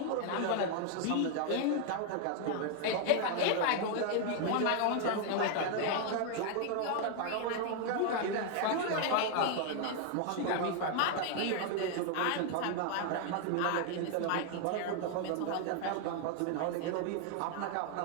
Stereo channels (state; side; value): different; both; correlation 0.00